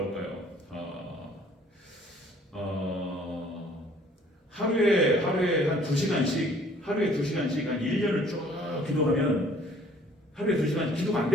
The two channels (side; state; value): both; normal; correlation 0.56